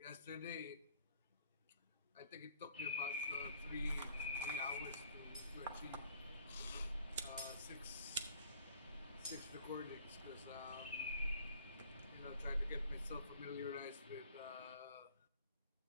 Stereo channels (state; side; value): inverted; both; correlation -0.56